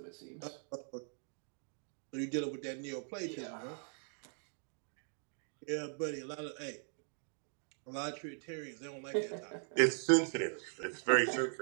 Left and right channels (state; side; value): silent; left; 51 dB below the other